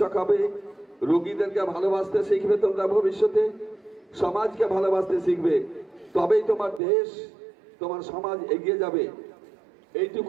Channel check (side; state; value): left; drops out; at 6.8 s